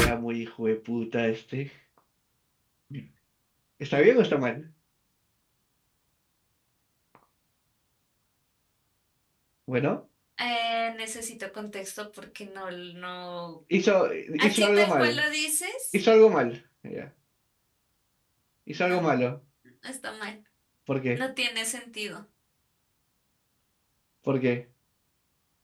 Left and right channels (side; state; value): both; identical; correlation 1.00